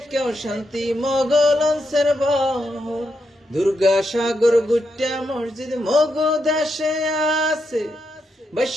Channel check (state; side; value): normal; both; correlation 0.83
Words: শান্তি মগলন্সের বহর। দুর্গা সাগর গুট্টা মসজিদ মগ দেশে আছে,